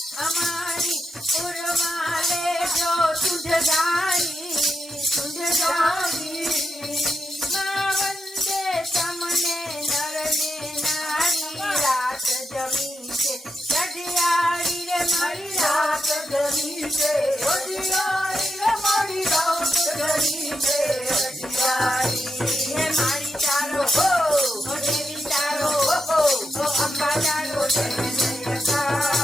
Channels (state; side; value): normal; both; correlation 0.85